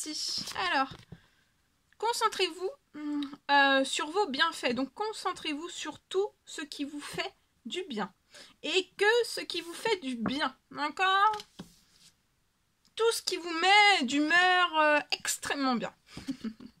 Alors, concentrez-vous sur vos bienfaits. Donc, concentrez-vous sur tout ce qui vous fait du bien. Et que ce qui vous fait du bien. D'accord? Tout ce qui vous met d'humeur extrêmement bien.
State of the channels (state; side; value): identical; both; correlation 1.00